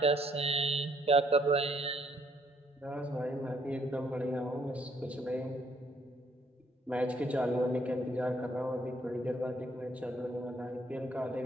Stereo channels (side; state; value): both; normal; correlation 0.68